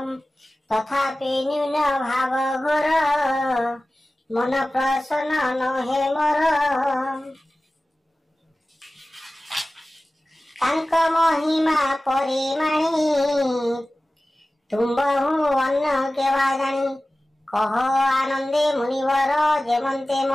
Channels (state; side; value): normal; both; correlation 0.96